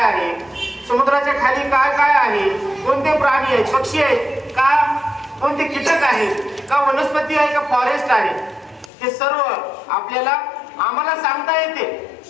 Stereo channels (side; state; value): right; drops out; at 8.9 s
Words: आहे, समुद्राच्या खाली काय काय आहे, कोणते प्राणी आहेत, पक्षी आहेत का, कोणते कीटक आहेत का, वनस्पती आहे का, फॉरेस्ट आहे, हे सर्व आपल्याला आम्हाला सांगता येते,